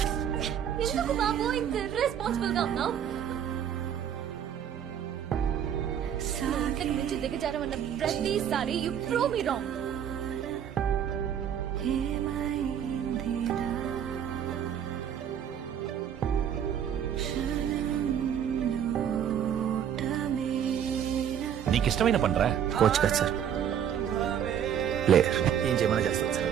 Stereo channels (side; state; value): left; quieter; 9.1 dB